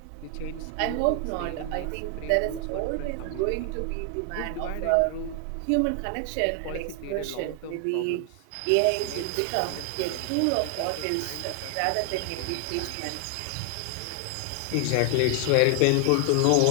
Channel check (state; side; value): different; both; correlation 0.00